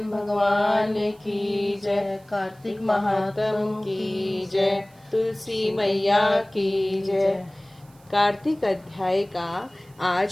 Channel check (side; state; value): right; noise; hiss, 30 dB below the sound